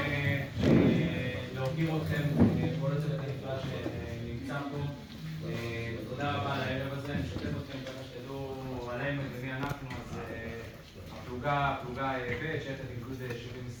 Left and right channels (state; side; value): identical; both; correlation 1.00